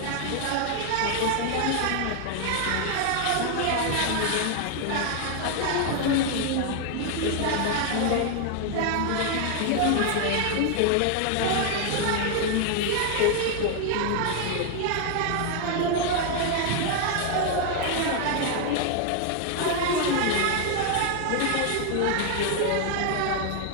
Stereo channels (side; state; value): both; different; correlation 0.00